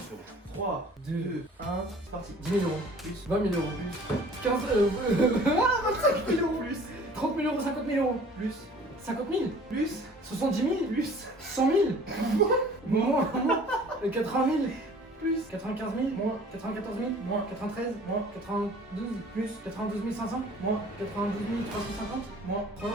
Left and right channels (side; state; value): both; normal; correlation 0.49